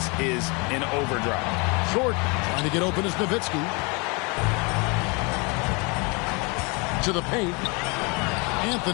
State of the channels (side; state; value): right; quieter; 30.0 dB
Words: is in overdrive. Short, trying to get open is Nowitzki. To the paint.